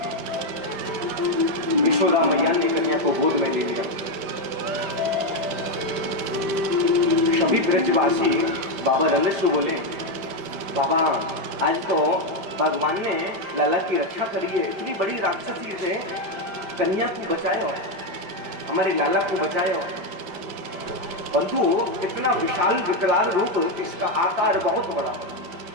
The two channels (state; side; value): late; left; 5.1 ms